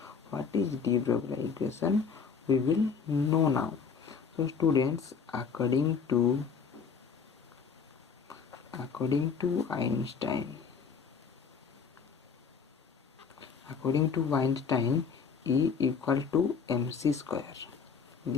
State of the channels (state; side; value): quieter; right; 5.9 dB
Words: What is de Broglie equation? We will know now. So students, according to Einstein, E equal to mc square.